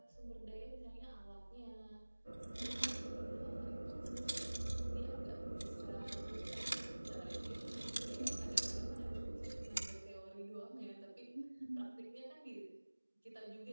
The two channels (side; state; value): both; inverted; correlation -1.00